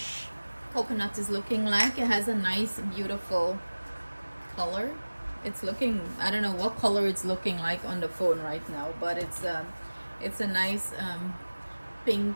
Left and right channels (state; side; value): inverted; both; correlation -1.00